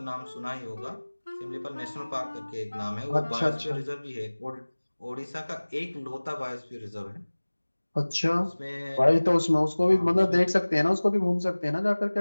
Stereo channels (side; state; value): both; inverted; correlation -1.00